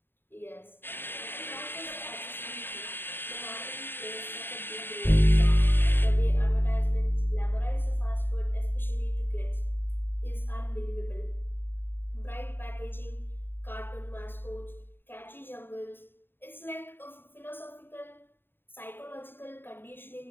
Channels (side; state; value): right; late; 0.099 ms